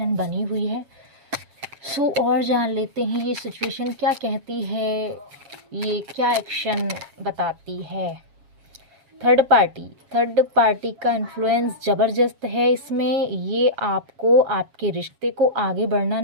बनी हुई है। सो और जान लेते हैं ये सिचुएशन क्या कहती है, ये क्या एक्शन बताती है। थर्ड पार्टी का इन्फ्लुएंस ज़बरदस्त है इसमें। ये आपको आपके रिश्ते को आगे बढ़ना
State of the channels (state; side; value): late; left; 7.3 ms